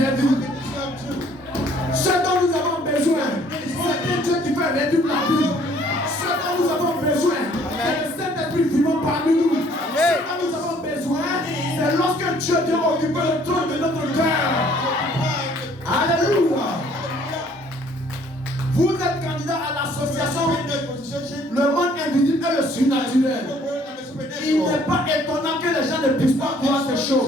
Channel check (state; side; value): normal; both; correlation 0.60